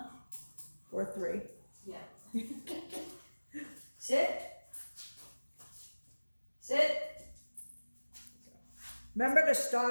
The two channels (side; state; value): both; inverted; correlation -1.00